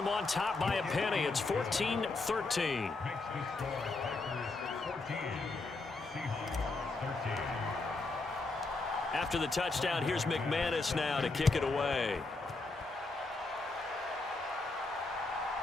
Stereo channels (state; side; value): quieter; right; 3.5 dB